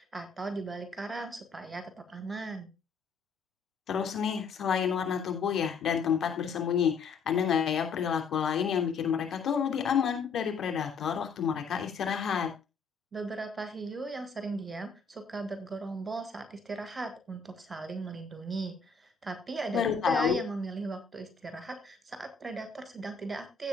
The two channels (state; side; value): quieter; right; 5.0 dB